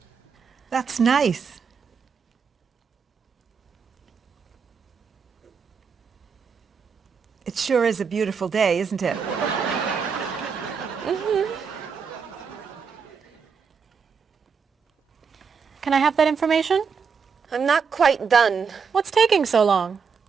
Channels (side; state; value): left; quieter; 6.0 dB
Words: That's nice. It sure is a beautiful day, isn't it? Can I have that information? I'm not quite done. What's taking so long?